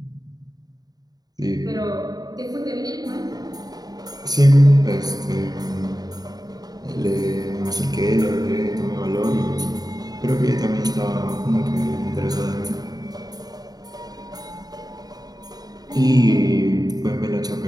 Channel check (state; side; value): late; left; 0.19 ms